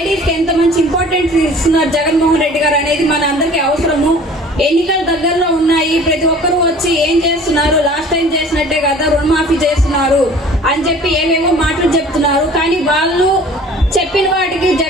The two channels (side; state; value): both; normal; correlation 0.47